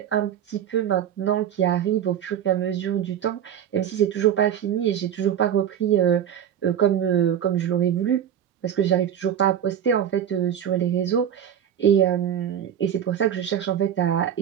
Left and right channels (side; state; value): left; quieter; 9.5 dB